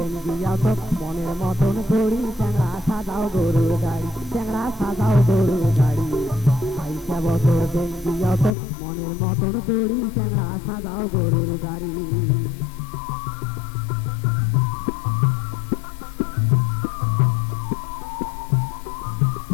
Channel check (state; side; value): drops out; right; at 8.5 s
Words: দিয়া তো মনের মতন করি, চ্যাংড়া সাজাও গরুর গাড়ি, চ্যাংড়া সাজাও গরুর গাড়ি। 22 বছর দিন দিয়া তো মনের মতন করি, চ্যাংড়া সাজাও গরুর গাড়ি।